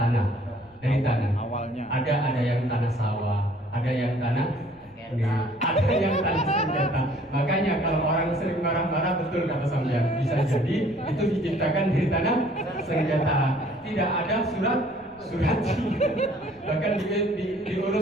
Awalnya. Ada yang tanah sawah, ada yang tanah ada yang tanah senjata. Makanya kalau orang sering marah-marah, betul kata sampean, bisa jadi itu diciptakan dari tanah senjata. Tidak ada surat bahkan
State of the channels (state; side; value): noise; left; rumble, 30 dB below the sound